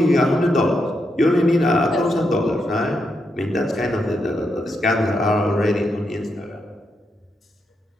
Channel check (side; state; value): both; normal; correlation 0.83